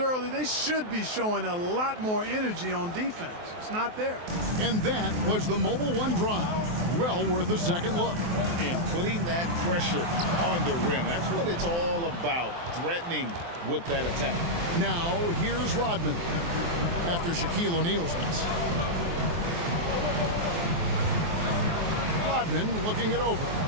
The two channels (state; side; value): late; left; 23 ms